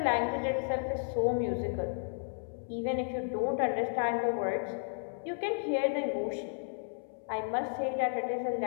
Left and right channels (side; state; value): right; silent; 56 dB below the other